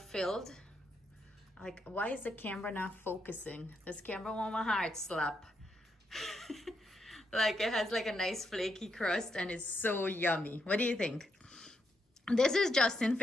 Like, why is the camera not focusing? This camera want my heart slap. Like, it has like a nice flaky crust and it's so yummy. What do you think? This is Justin's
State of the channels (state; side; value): normal; both; correlation 0.80